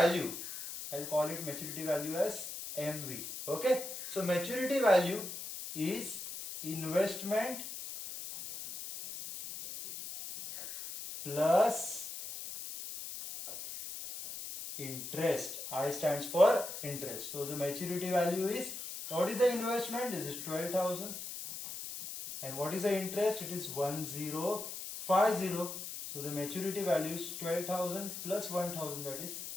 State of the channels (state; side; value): noise; left; hiss, 8 dB below the sound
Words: I'll call it maturity value as MV. Okay. So maturity value is investment plus interest. I stands for interest. So the maturity value is, what is the investment? This is 12,000. And what is the interest? It is 1050. So the maturity value is 12,000 plus 1,000, that is